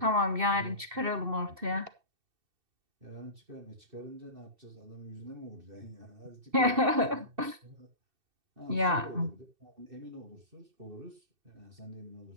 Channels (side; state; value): left; late; 2.6 ms